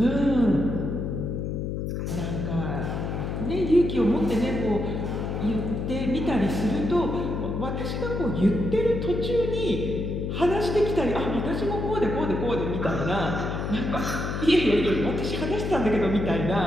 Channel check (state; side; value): noise; left; hum, 3 dB below the sound